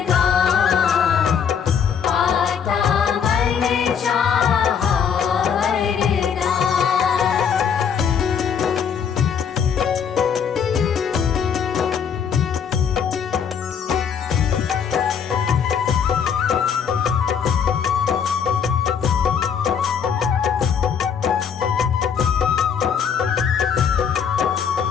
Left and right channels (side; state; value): right; quieter; 7.3 dB